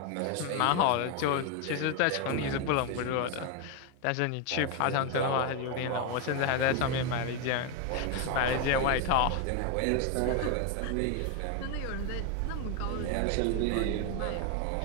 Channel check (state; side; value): different; both; correlation 0.01